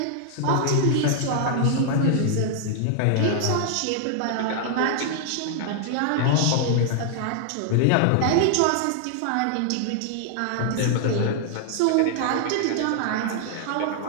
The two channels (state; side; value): different; both; correlation 0.00